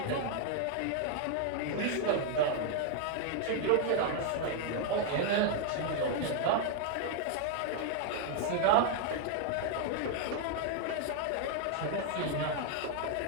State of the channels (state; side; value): different; both; correlation 0.00